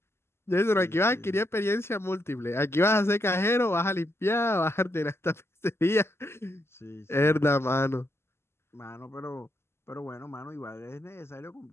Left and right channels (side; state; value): right; late; 0.12 ms